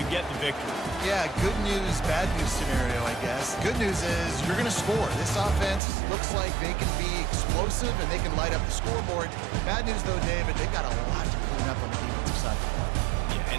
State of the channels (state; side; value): drops out; left; at 5.8 s